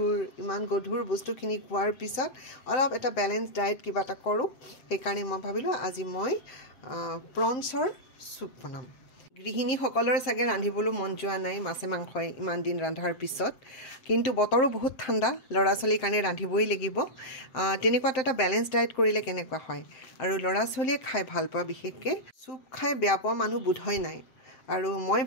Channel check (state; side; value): late; right; 7.7 ms